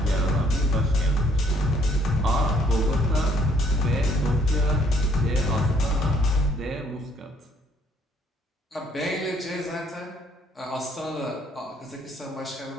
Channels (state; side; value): normal; both; correlation 0.65